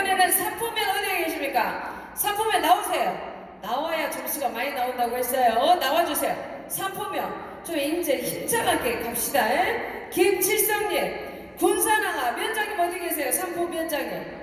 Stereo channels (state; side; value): identical; both; correlation 1.00